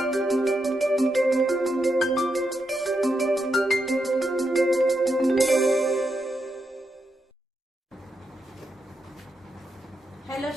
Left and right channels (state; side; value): normal; both; correlation 0.84